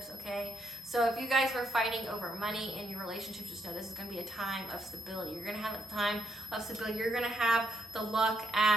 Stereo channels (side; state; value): both; normal; correlation 0.78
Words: okay? So if you guys were fighting over money in your relationship, just know this is going to be a time of stability. You're going to have a time of stability. You're going to have the luck